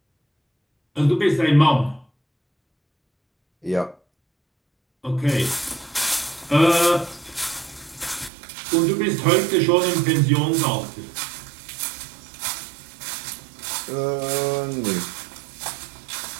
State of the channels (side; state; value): left; drops out; at 8.3 s